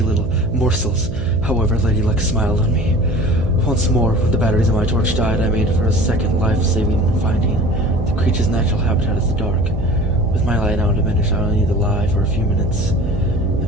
little morsels. However, Lady Luck smiled on me. Once more, when the batteries of my torch died, I made for a second life-saving finding. The creature's natural habitat is the dark. With my light now diminished, I only need to lie for a few minutes,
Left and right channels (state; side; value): noise; right; hum, 9 dB below the sound